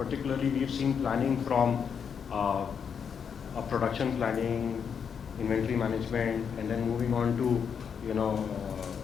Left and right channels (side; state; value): right; quieter; 7.0 dB